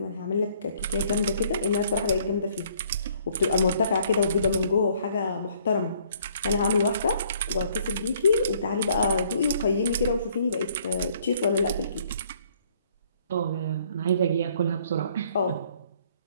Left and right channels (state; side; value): inverted; both; correlation -0.62